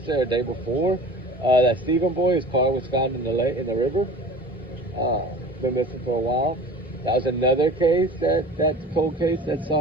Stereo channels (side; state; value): both; normal; correlation 0.40